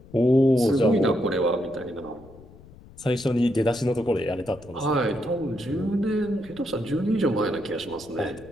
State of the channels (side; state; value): left; noise; rumble, 21 dB below the sound